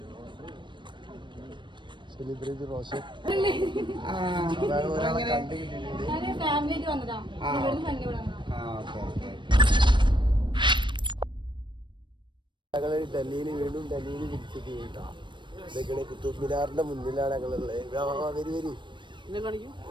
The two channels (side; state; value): left; late; 0.23 ms